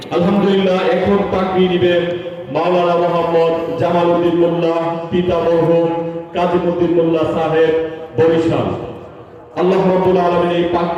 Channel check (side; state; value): both; identical; correlation 1.00